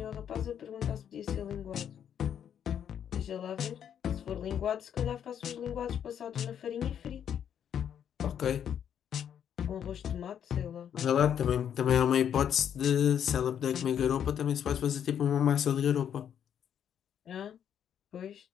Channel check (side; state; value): right; quieter; 9.0 dB